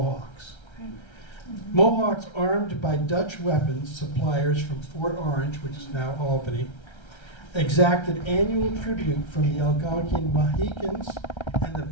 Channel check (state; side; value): late; right; 1.3 ms